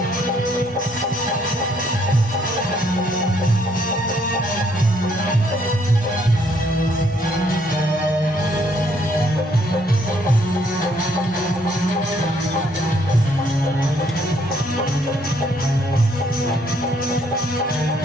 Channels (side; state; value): both; normal; correlation 0.68